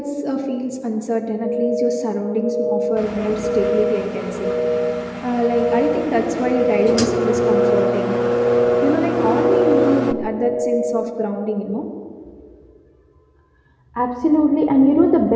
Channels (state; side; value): identical; both; correlation 1.00